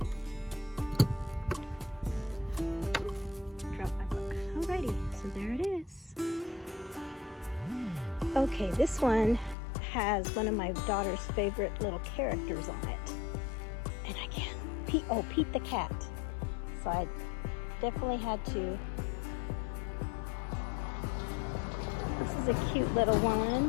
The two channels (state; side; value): drops out; right; at 9.6 s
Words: Drop my book. Alrighty, so there it is. Okay, this one has one of my daughter's favorite little characters on it. And I can't, Pete the cat. So I definitely had to. This is a cute little